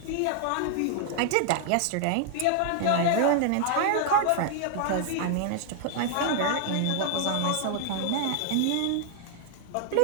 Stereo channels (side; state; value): both; different; correlation 0.00